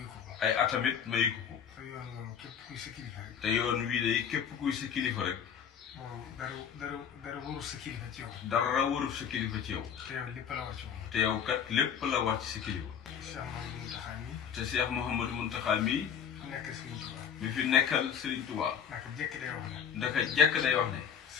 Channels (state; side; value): quieter; right; 7.8 dB